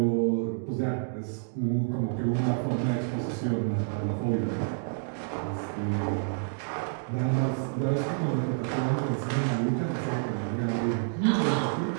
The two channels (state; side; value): silent; left; digital silence